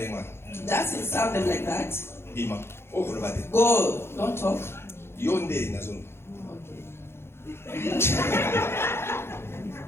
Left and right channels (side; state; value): right; late; 0.12 ms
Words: doesn't sound them like that. Bima. Go, don't talk. Yonde nazon.